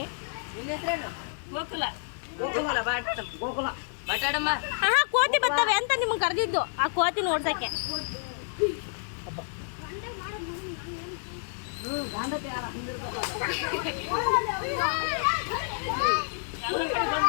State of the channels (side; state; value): right; silent; digital silence